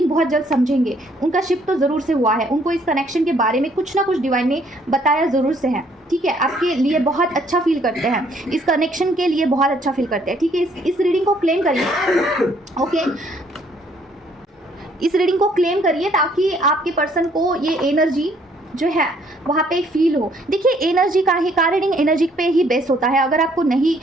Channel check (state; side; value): normal; both; correlation 0.65